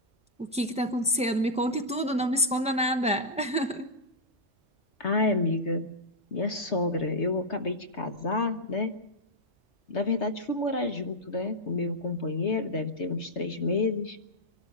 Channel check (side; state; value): both; normal; correlation -0.04